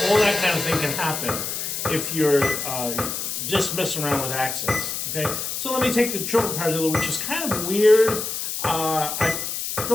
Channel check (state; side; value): noise; left; hiss, 4 dB below the sound